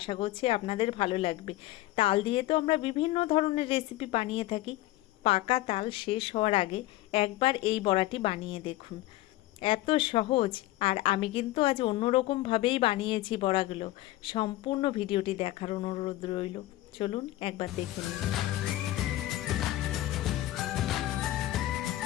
করছি আপনাদের ভালো লাগবে। তাল দিয়ে তো আমরা বিভিন্ন ধরনের রেসিপি বানিয়ে থাকি, পাকা তাল শেষ হওয়ার আগে একবার এই বড়াটি বানিয়ে দেখুন, এত সহজ। আর আমি কিন্তু আজ অন্যরকমভাবেই বানিয়েছি বড়াগুলো। সম্পূর্ণ ভিডিওটি দেখার অনুরোধ রইল, চলুন একবার দেখে নিন।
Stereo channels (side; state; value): right; quieter; 16.5 dB